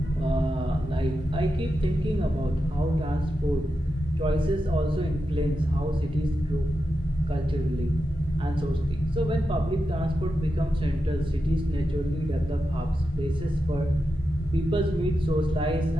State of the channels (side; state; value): both; normal; correlation 0.89